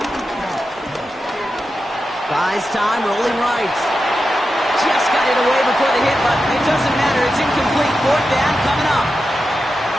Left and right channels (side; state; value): both; normal; correlation 0.90